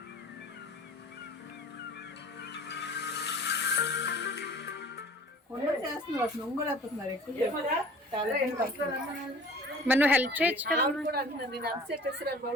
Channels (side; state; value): both; normal; correlation 0.46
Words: మరి నువ్వు హెల్ప్ చేయొచ్చు కదా.